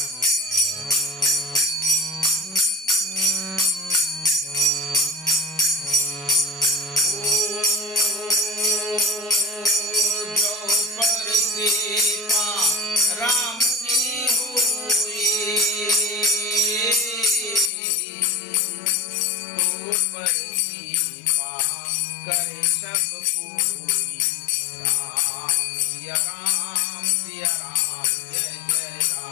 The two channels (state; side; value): drops out; right; at 17.7 s